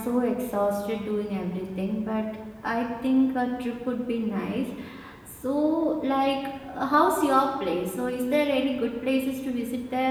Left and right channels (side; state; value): both; identical; correlation 1.00